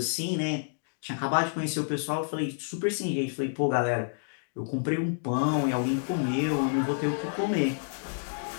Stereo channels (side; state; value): right; silent; digital silence